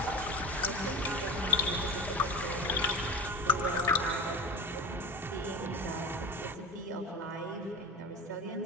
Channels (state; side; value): normal; both; correlation 0.30